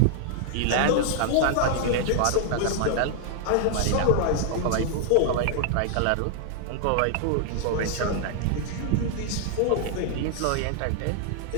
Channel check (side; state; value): both; different; correlation 0.00